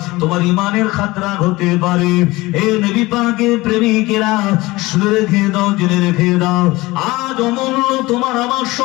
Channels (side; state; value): right; quieter; 20.6 dB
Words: তোমার ইমানের খাতরা হতে পারে। এ নবী পাকের প্রেমিকেরা, শুনে রেখে দাও, জেনে রেখে দাও, আজ অমূল্য তোমার আমার